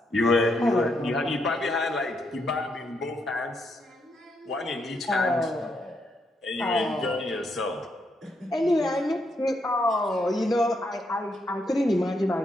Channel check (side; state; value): both; normal; correlation 0.78